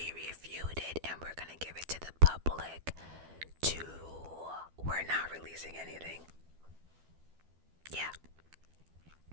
reviewed it and we're gonna give it to the public. 2, we're not releasing anything. Yeah.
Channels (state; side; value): late; left; 12 ms